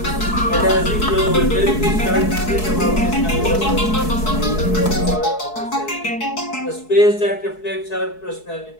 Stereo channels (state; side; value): late; right; 4.6 ms